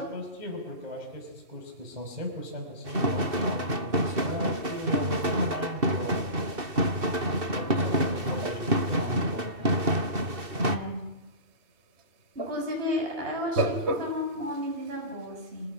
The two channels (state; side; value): late; left; 2.7 ms